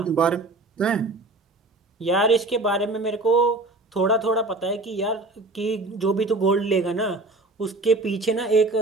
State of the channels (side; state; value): left; quieter; 3.0 dB